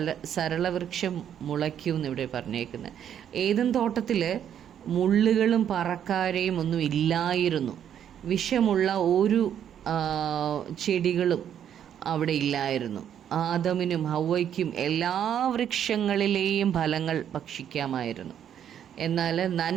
സരളവൃക്ഷം മുളയ്ക്കും എന്നിവിടെ പറഞ്ഞേക്കുന്നത്. ഏദൻ തോട്ടത്തിൽ മുള്ളുകളും പറക്കാരയും ഒന്നും ഇല്ലായിരുന്നു. വിഷമുള്ള ഒരു ചെടികളും അവിടെ ഇല്ലായിരുന്നു. ആദമിനും ഹവ്വയ്ക്കും എല്ലാ വൃക്ഷങ്ങളിലെയും ഫലങ്ങൾ ഭക്ഷിക്കാമായിരുന്നു. എന്നാൽ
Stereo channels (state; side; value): quieter; left; 9.5 dB